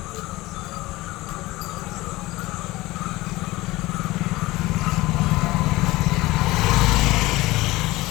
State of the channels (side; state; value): right; quieter; 19.5 dB